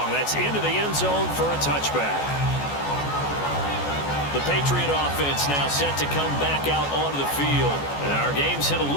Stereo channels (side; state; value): right; late; 14 ms